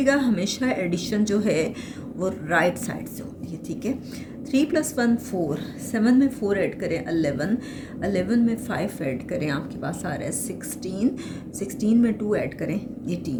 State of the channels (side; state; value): both; identical; correlation 1.00